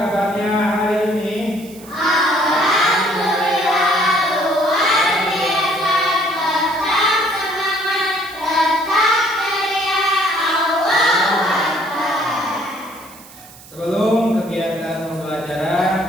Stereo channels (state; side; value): noise; right; hiss, 20 dB below the sound